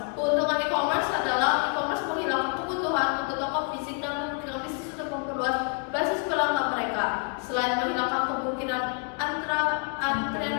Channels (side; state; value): right; quieter; 38.8 dB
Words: Keuntungan e-commerce adalah e-commerce menghilangkan kebutuhan untuk toko fisik dan memungkinkan bisnis untuk memperluas basis pelanggan mereka. Selain menghilangkan kemungkinan